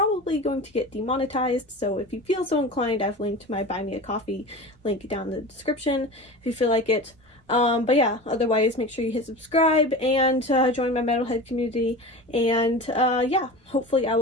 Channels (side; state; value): both; normal; correlation 0.32